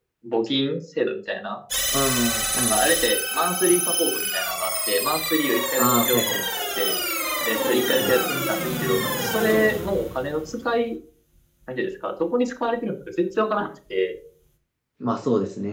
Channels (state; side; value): identical; both; correlation 1.00